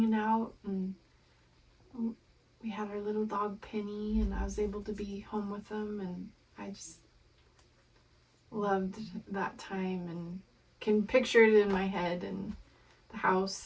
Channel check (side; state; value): both; identical; correlation 1.00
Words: out, and we had our little dog Penny, and I was able to be home with them, and loved that time and can picture it in my head, and the